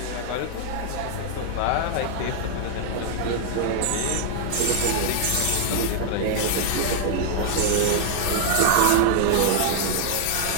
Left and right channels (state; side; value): different; both; correlation 0.00